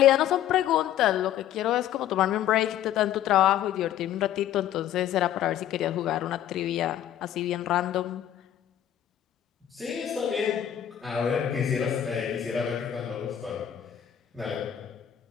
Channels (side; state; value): right; quieter; 11.0 dB